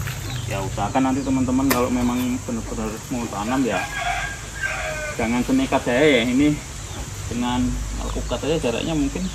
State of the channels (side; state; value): both; identical; correlation 1.00